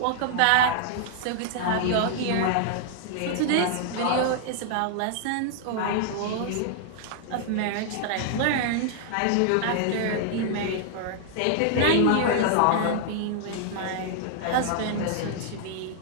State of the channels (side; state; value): both; different; correlation -0.01